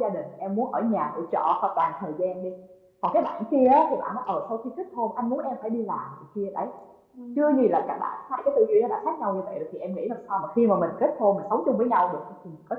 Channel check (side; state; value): both; identical; correlation 1.00